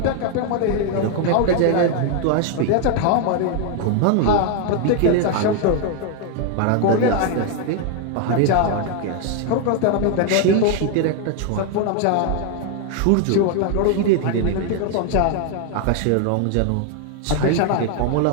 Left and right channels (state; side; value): different; both; correlation 0.00